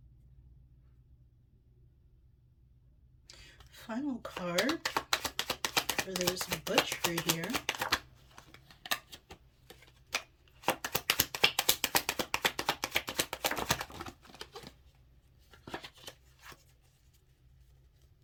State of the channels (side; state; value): both; identical; correlation 1.00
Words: Final card for this butchery here.